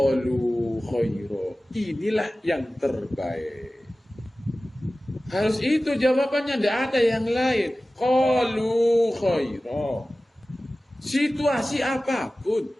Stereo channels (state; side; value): normal; both; correlation 0.96